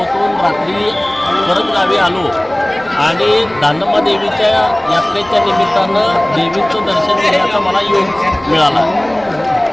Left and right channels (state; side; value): noise; left; rumble, 26 dB below the sound